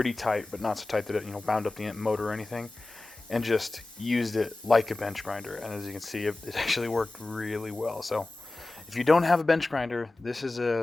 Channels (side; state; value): right; quieter; 3.0 dB